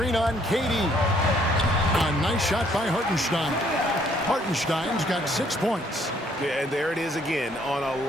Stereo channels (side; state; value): both; normal; correlation 0.65